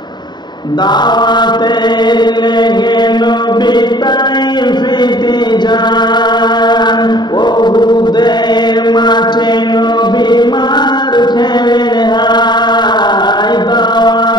দাওয়াতের লেগে নবী তাইফেতে যান, উহুদের মাঠে নবী মার খেলেন হায়।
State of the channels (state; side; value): late; right; 0.21 ms